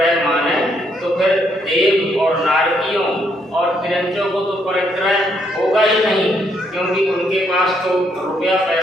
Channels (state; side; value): normal; both; correlation 0.73